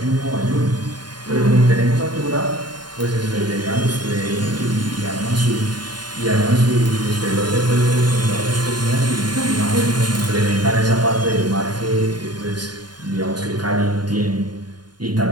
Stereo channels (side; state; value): left; late; 0.70 ms